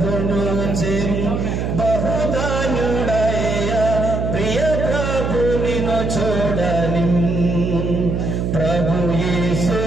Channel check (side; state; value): right; noise; hum, 1 dB below the sound